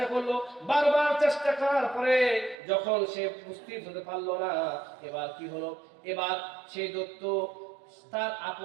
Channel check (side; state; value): left; drops out; at 2.6 s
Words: করলো, বারবার চেষ্টা করার পরে যখন সে উপস্থিত হতে পারলো না, এবার কি হলো? এবার সেই দত্ত তার